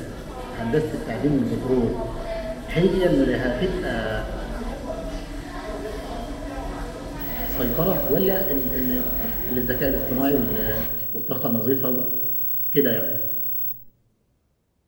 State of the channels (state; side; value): identical; both; correlation 1.00